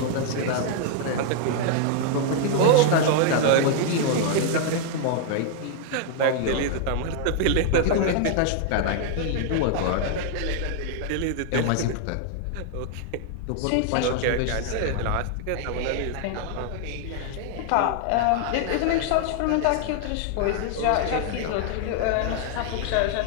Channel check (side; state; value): both; different; correlation 0.00